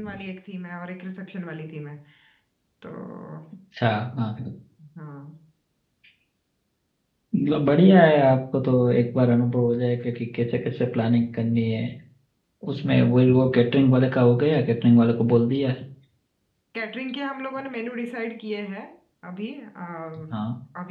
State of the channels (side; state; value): both; identical; correlation 1.00